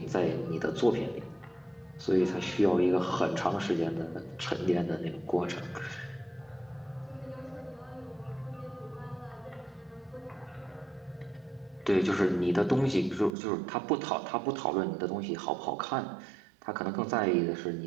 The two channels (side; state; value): left; drops out; at 13.4 s